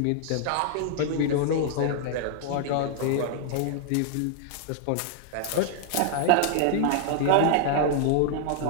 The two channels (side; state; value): both; different; correlation -0.01